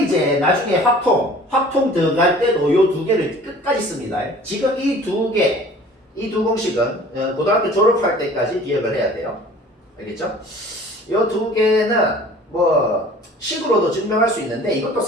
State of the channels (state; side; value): normal; both; correlation 0.48